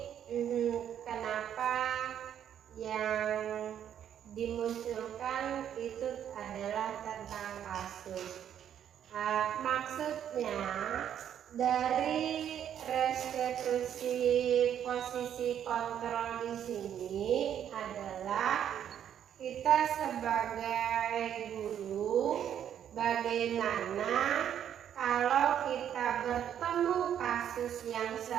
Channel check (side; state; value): left; quieter; 9.6 dB